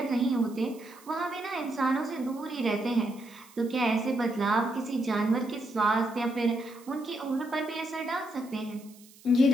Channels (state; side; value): noise; right; hiss, 24 dB below the sound